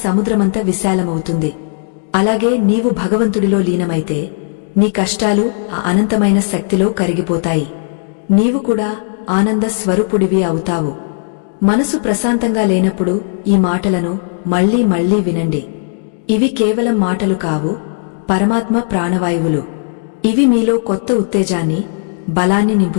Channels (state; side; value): silent; right; digital silence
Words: సముద్రమంతా విశాలమవుతుంది. అలాగే నీవు భగవంతుడిలో లీనమైతే నీ కష్టాలు ఆ అనంతమైన శక్తిలో కరిగిపోతాయి. నీవు కూడా ఆనంద స్వరూపుడివి అవుతావు. మనసు ప్రశాంతంగా లేనప్పుడు ఈ మాటలను మళ్లీ మళ్లీ వినండి. ఇవి కేవలం మాటలు కావు, పరమాత్మ ప్రాణవాయువులు. ఇవి మీలో కొత్త ఉత్తేజాన్ని, బలాన్ని